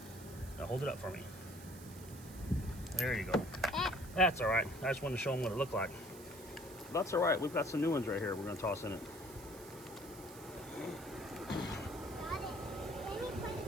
Now hold it up for me. There you go. That's all right. I just wanted to show them what it looked like. That's all right. We've got some new ones right here we're going to toss in it.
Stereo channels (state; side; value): noise; right; hiss, 17 dB below the sound